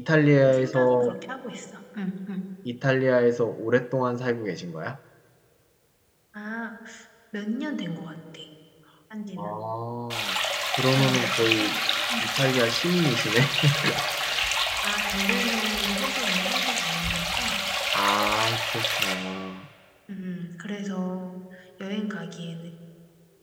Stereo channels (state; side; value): identical; both; correlation 1.00